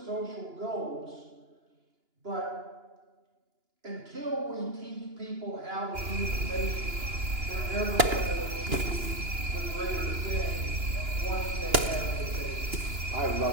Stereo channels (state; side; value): late; left; 2.9 ms